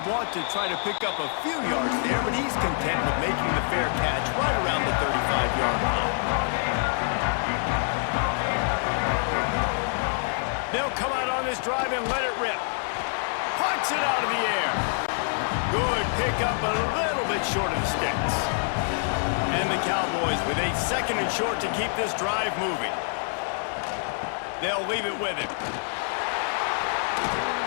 want to try to pick up a few yards there, but he's content with making the fair catch right around the 35-yard line. They'll come out on this drive and let it rip. Punts it out of the air. Good pickup, a little bit short of the sticks. And the Cowboys with a 2nd and short to keep this drive moving. They'll leave it with him.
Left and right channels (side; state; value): right; silent; 57 dB below the other